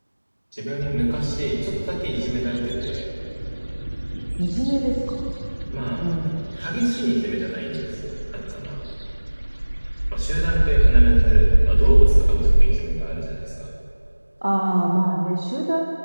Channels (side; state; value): both; inverted; correlation -1.00